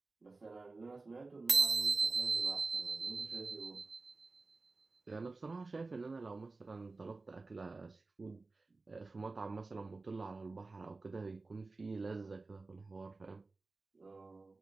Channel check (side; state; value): left; quieter; 3.6 dB